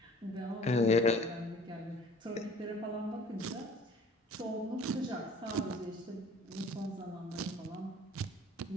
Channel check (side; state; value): both; normal; correlation 0.50